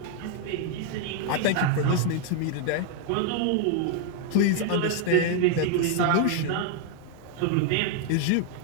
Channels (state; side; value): different; both; correlation 0.00